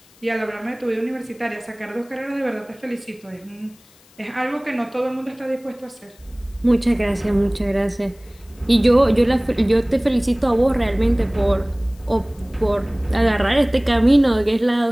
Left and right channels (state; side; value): noise; left; hiss, 29 dB below the sound